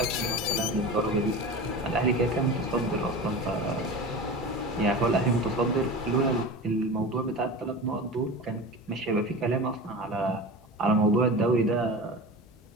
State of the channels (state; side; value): normal; both; correlation 0.31